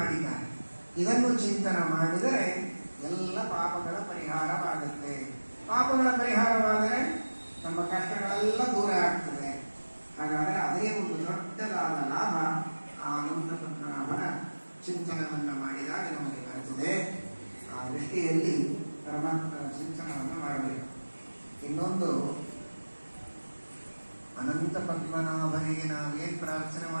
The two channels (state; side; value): inverted; both; correlation -1.00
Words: ಇದನ್ನು ಚಿಂತನೆ ಮಾಡಿದರೆ ಎಲ್ಲ ಪಾಪಗಳ ಪರಿಹಾರವಾಗುತ್ತೆ. ಪಾಪಗಳ ಪರಿಹಾರವಾದರೆ ನಮ್ಮ ಕಷ್ಟಗಳೆಲ್ಲ ದೂರ ಆಗ್ತದೆ. ಹಾಗಾದರೆ ಅದೇ ಒಂದು ದೊಡ್ಡದಾದ ಲಾಭ ಆ ಅನಂತ ಪದ್ಮನಾಭನ ಚಿಂತನವನ್ನು ಮಾಡಿದಾಗ ನಮಗೆ ಬರುತ್ತದೆ. ಆ ದೃಷ್ಟಿಯಲ್ಲಿ ಪರಮಾತ್ಮನ ಚಿಂತನವನ್ನು ಮಾಡಬೇಕು. ಇನ್ನೊಂದು, ಅನಂತ ಪದ್ಮನಾಭನಿಗೆ ನಾವೇನು ಪ್ರಾರ್ಥನೆ